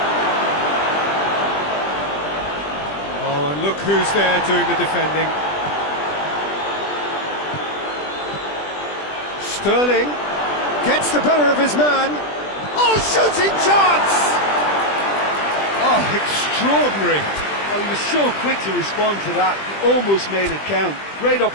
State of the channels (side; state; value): right; late; 20 ms